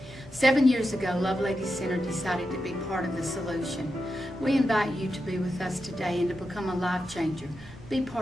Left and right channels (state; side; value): normal; both; correlation 0.88